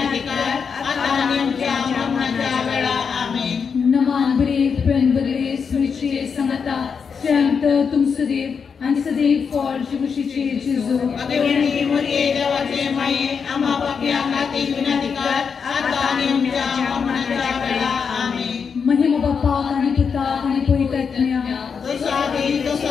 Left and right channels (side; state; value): right; quieter; 6.1 dB